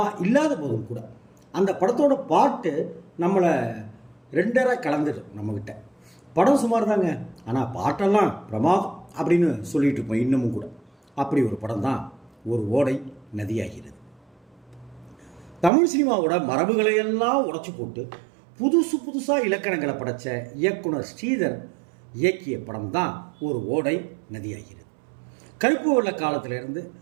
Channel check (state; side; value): drops out; left; at 15.7 s